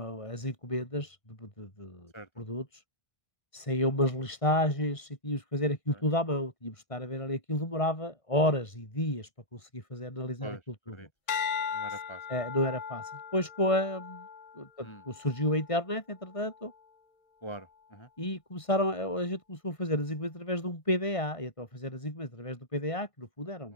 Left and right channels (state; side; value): late; right; 1.5 ms